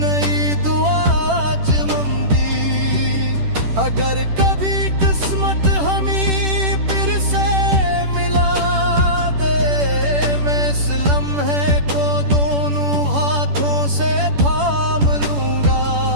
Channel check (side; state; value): left; late; 10 ms